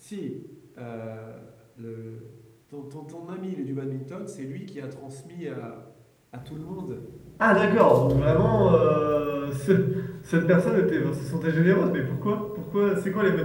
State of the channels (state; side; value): identical; both; correlation 1.00